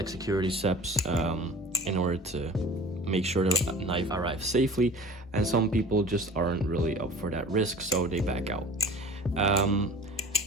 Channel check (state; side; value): normal; both; correlation 0.40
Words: security steps in order to make sure the knife arrives safely. And some people just aren't really up for that risk, so they back out.